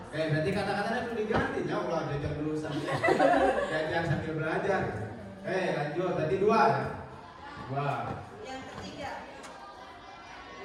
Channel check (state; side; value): identical; both; correlation 1.00